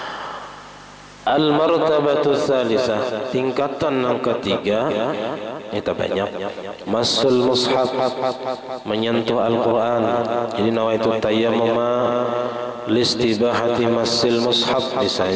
Al-martabatu tsalisah tingkatan yang ketiga itu banyak masul mushaf, menyentuh Al-Quran. Jadi nawaitu tayammum listibahati masil mushaf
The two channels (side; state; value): both; identical; correlation 1.00